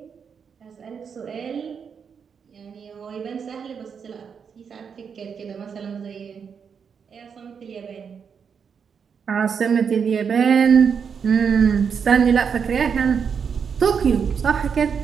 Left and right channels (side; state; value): left; quieter; 6.6 dB